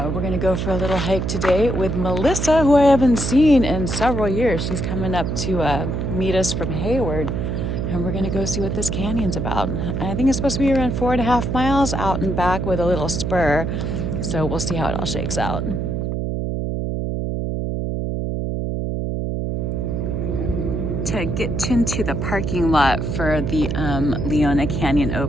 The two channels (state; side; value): noise; right; hum, 1 dB below the sound